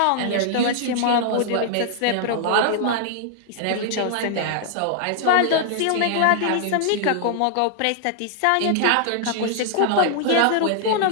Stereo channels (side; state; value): both; different; correlation -0.01